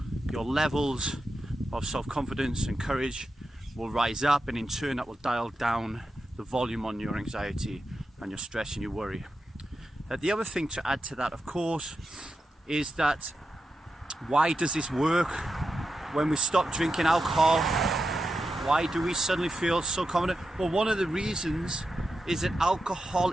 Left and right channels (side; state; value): both; normal; correlation 0.89